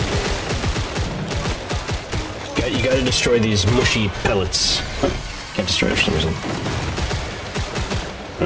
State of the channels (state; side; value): identical; both; correlation 1.00